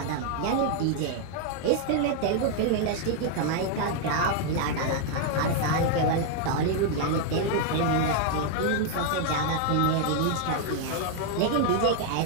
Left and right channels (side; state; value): both; different; correlation 0.00